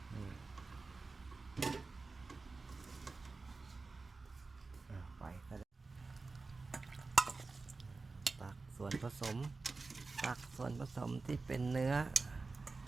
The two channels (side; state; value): left; quieter; 3.9 dB